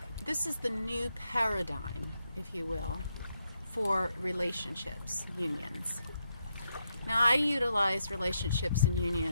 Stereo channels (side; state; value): both; inverted; correlation -0.81